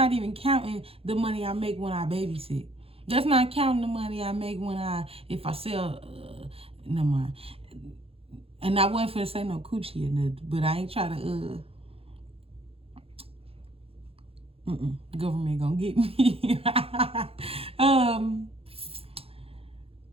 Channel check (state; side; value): late; left; 0.28 ms